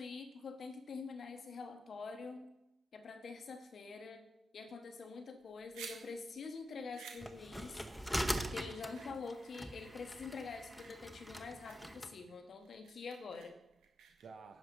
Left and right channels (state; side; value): normal; both; correlation 0.89